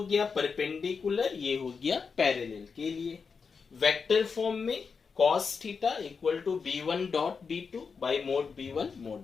गया perpendicular, ये हो गया पैरेलल के लिए. वेक्टर फॉर्म में cos theta equal to b1 dot b2 by mod b1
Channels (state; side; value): quieter; right; 5.4 dB